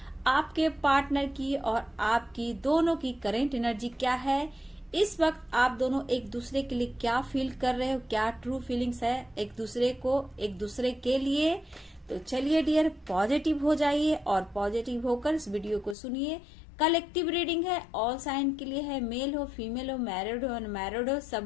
आपके पार्टनर की और आपकी दोनों की करेंट एनर्जी क्या है, इस वक्त आप दोनों एक दूसरे के लिए क्या फील कर रहे हो, क्या ट्रू फीलिंग्स है एक दूसरे के लिए। तो चलिए डियर, पॉजिटिव हो जाइए और पॉजिटिव होकर इस वीडियो को सुनिए। कलेक्टिव रीडिंग है, ऑल साइन के लिए है, मेल हो, फीमेल हो, मैरिड हो, अनमैरिड हो,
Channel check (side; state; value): right; drops out; at 16.0 s